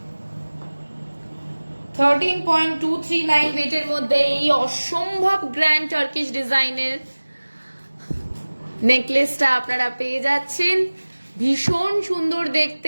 $13.239 ওয়েটের মধ্যে এই অসম্ভব গ্র্যান্ড টার্কিশ ডিজাইনের নেকলেসটা আপনারা পেয়ে যাচ্ছেন। ভীষণ সুন্দর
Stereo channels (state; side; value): inverted; both; correlation -1.00